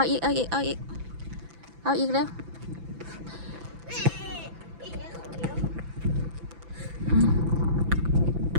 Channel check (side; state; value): left; late; 6.0 ms